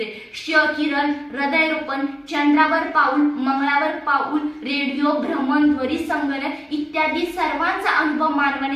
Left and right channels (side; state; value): both; identical; correlation 1.00